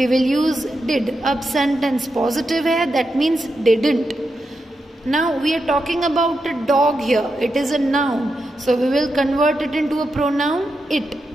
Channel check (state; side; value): normal; both; correlation 0.86